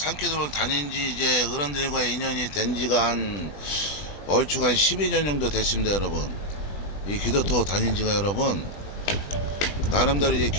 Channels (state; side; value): late; right; 20 ms